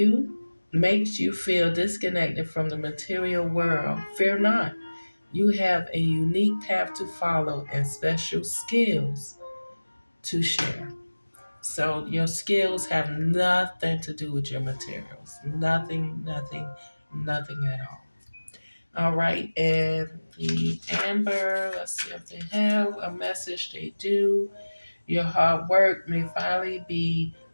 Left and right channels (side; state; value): both; inverted; correlation -1.00